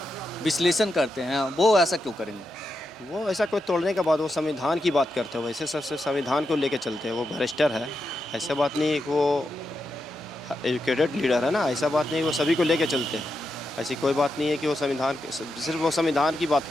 विश्लेषण करते हैं, वो ऐसा क्यों करेंगे? वो ऐसा कोई तोड़ने के बाद वो संविधान की बात करते हैं, वैसे सबसे संविधान को लेके चलते हैं। वो भ्रष्टर है, ऐसा बात नहीं है कि वो एजुकेटेड लीडर है ना, ऐसा बात नहीं, वो सभी को लेके चलते हैं। ऐसी कोई बात नहीं है कि वो सिर्फ वो संविधान की बात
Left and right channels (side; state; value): both; normal; correlation 0.86